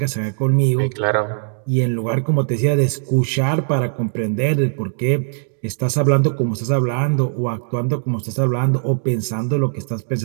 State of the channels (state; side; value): silent; left; digital silence